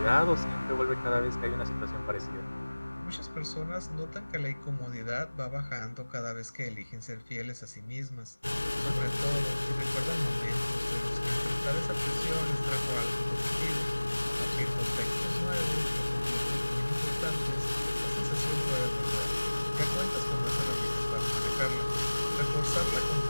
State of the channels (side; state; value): both; inverted; correlation -1.00